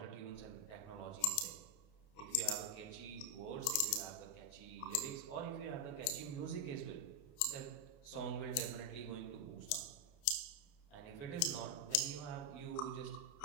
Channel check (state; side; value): late; right; 29 ms